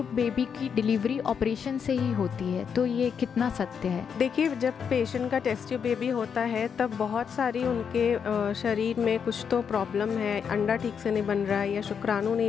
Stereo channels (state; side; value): quieter; right; 7.0 dB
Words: बेबी की डिलीवरी ऑपरेशन से ही होती है, तो ये कितना सत्य है? देखिए, जब पेशेंट का टेस्ट ट्यूब बेबी होता है तब बहुत सारी उनके शरीर में कुछ तो प्रॉब्लम है, अंडा ठीक से नहीं बन रहा है या शुक्राणु